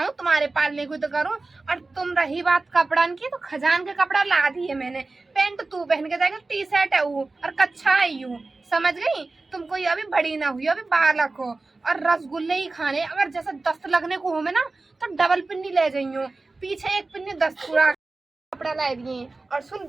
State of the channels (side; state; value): left; quieter; 3.5 dB